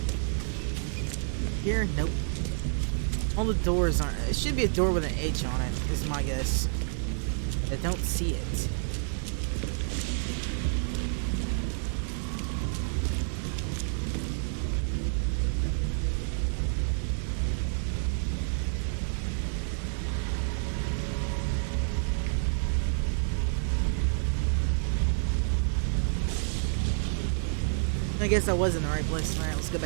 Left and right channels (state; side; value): silent; left; digital silence